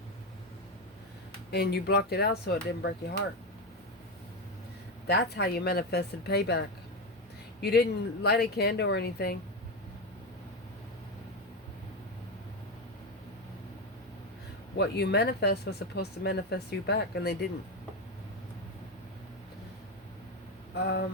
And you blocked it out so it didn't break your heart. That's how you manifested payback. You didn't light a candle or anything. What you manifest was supposed to manifest you back, and they didn't.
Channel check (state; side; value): normal; both; correlation 0.14